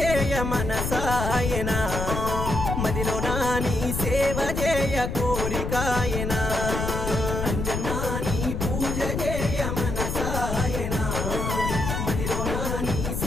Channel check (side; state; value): left; noise; rumble, 2 dB below the sound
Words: మనసాయనా మదిలో నాని సేవ చేయ కోరికాయనా అంజన్నా నీ పూజ చేయ మనసాయనా మదిలో నాని